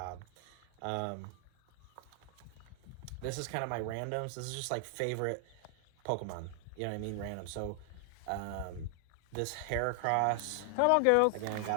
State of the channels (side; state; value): both; different; correlation 0.00